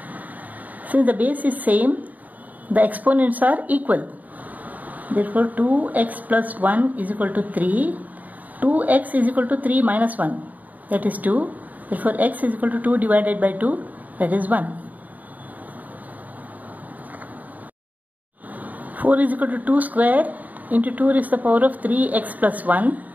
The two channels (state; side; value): late; left; 0.077 ms